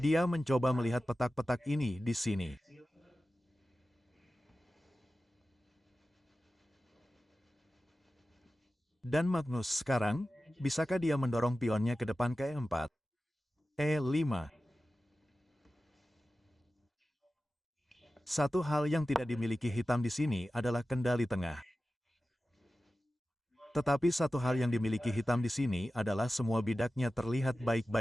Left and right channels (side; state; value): both; normal; correlation 0.94